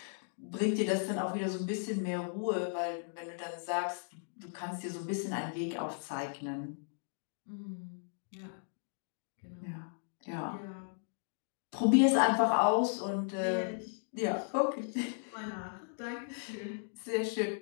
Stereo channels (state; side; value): silent; right; digital silence